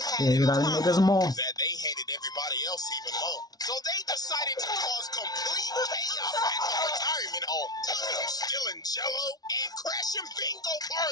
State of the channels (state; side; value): late; right; 0.19 ms